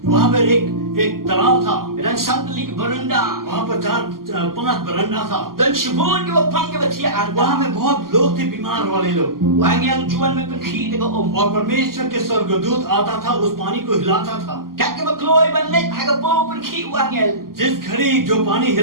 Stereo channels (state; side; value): late; left; 0.92 ms